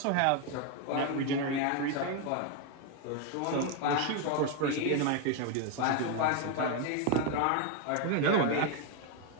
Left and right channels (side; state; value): both; different; correlation 0.01